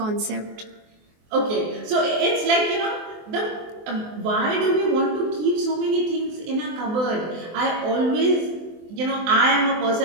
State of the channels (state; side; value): late; left; 24 ms